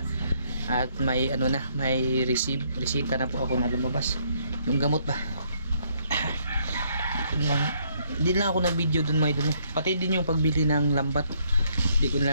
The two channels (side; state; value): both; inverted; correlation -0.69